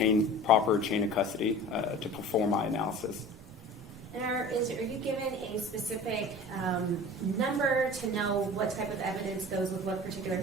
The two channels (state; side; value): normal; both; correlation 0.40